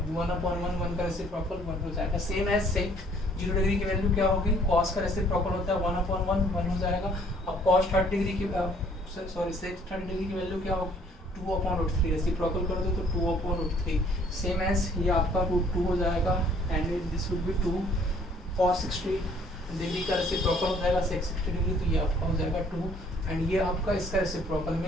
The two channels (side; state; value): both; normal; correlation 0.60